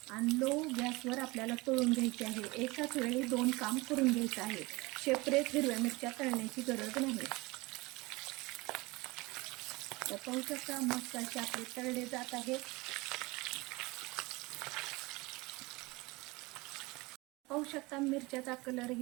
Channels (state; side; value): quieter; left; 23.3 dB